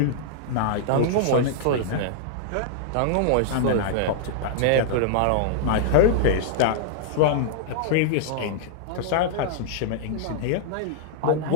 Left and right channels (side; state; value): both; different; correlation -0.01